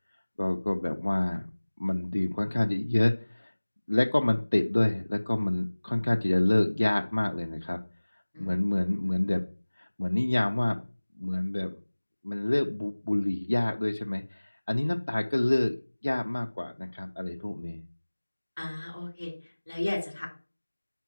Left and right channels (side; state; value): both; inverted; correlation -1.00